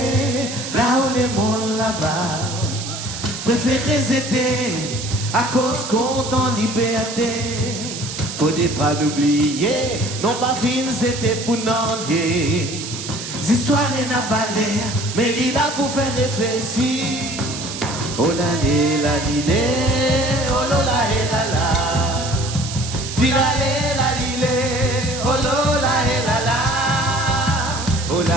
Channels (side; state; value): right; noise; hiss, 8 dB below the sound